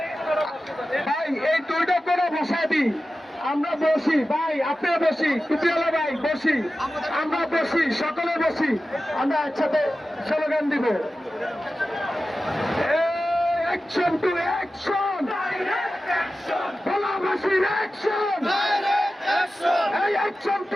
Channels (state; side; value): normal; both; correlation 0.94